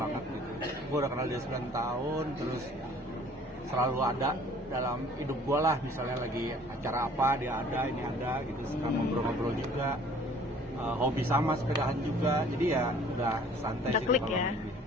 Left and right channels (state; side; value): normal; both; correlation 0.53